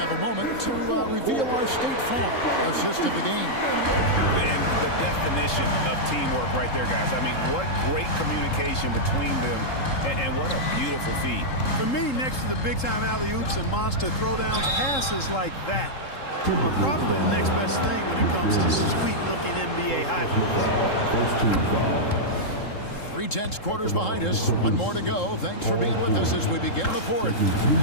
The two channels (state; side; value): late; right; 3.7 ms